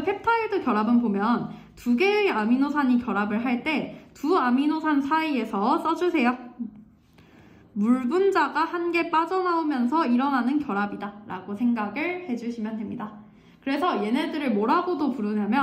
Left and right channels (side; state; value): both; identical; correlation 1.00